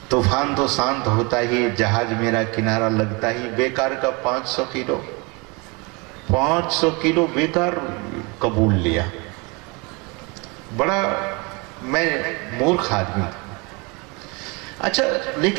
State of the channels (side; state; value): left; quieter; 28.7 dB